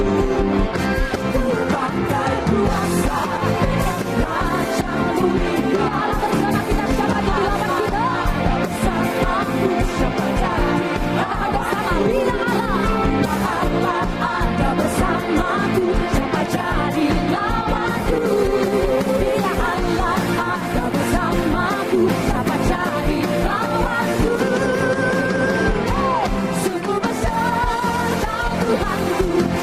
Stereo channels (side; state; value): both; identical; correlation 1.00